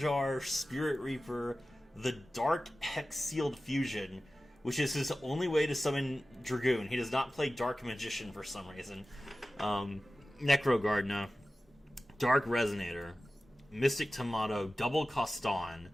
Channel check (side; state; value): both; normal; correlation 0.95